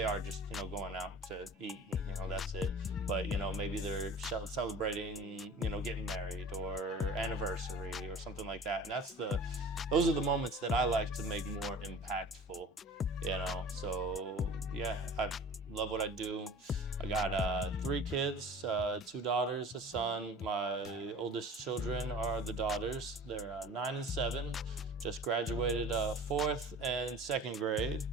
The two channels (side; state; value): both; normal; correlation 0.41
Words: are just going out to eat, and that's it. But maybe they're celebrating getting married or anniversary or something like that. And those are the moments that I like to make more impactful. So yeah, I love what I do. I got 3 kids, 2 daughters, a son. My oldest children are the daughters. They're 9 and 7. Just graduated 4th and 2nd grade.